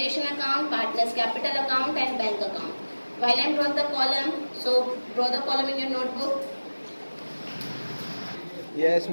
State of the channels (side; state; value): both; inverted; correlation -1.00